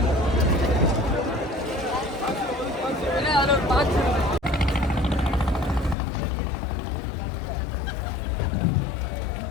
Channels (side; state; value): right; drops out; at 6.0 s